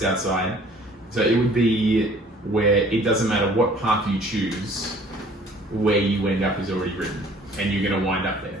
outside. So it would be where it doesn't matter what path you choose, where you end up is already written, and you're going to wind up there.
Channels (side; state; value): both; normal; correlation 0.54